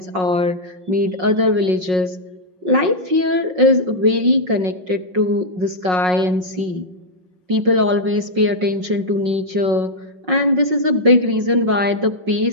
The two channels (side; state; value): left; late; 5.5 ms